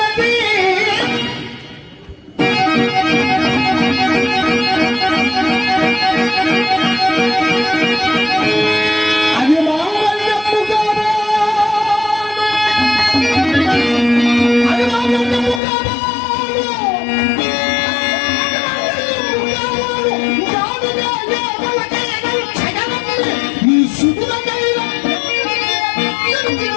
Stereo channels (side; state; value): right; drops out; at 15.6 s